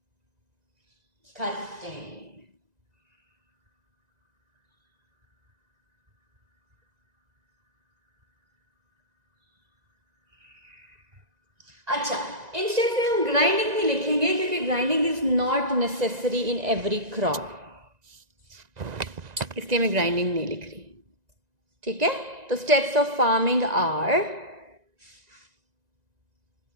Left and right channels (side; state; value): left; late; 1.9 ms